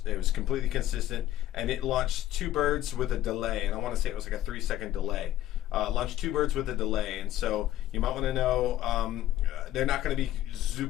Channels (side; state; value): right; quieter; 13.6 dB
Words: was completely consistent, and it launched 2 birds with a delay, and I want to say it was like a 3-second delay. Launched 2 birds with a delay, and so you might want to know they're not going to be